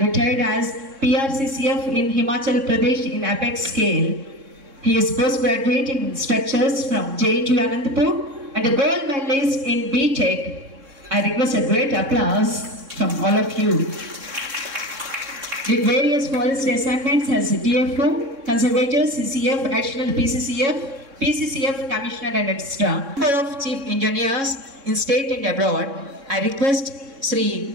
retired as PRCCF in Himachal Pradesh in apex scale. He is postgraduate in structures from JNTU Anantapur and a gold medalist in BTech. I request a great applause from all of you. Did various forest assignments as DFO, Conservator, CCF, Additional PCCF, PCCF Commissioner and etc. Number of Chief Engineers in state and abroad. I request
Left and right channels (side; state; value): left; late; 3.6 ms